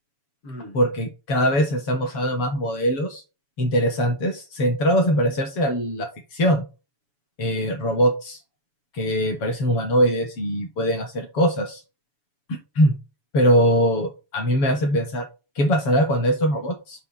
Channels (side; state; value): right; late; 7.0 ms